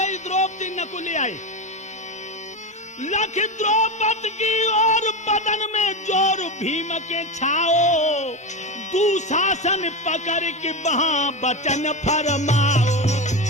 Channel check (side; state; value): both; normal; correlation 0.18